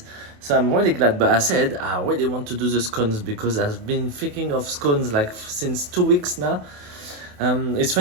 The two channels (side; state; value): left; late; 28 ms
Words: So I'm really glad. But I said I really want to do the scones because I've been thinking of scones like since 2 weeks now. It's